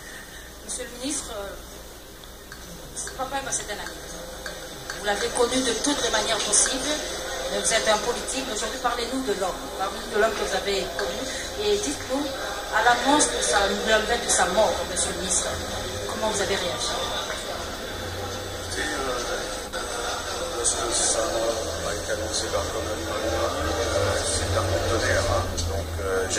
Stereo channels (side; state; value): both; identical; correlation 1.00